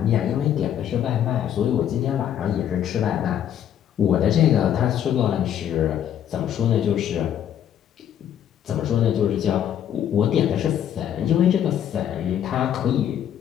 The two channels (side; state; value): right; quieter; 10.0 dB